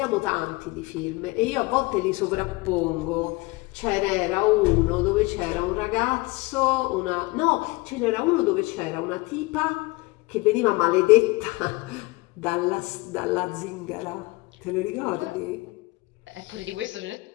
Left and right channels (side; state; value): right; quieter; 23.5 dB